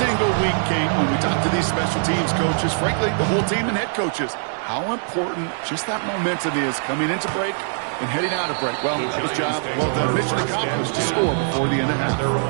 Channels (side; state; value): left; silent; digital silence